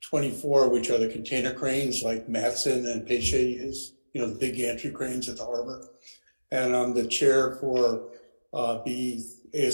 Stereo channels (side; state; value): both; inverted; correlation -1.00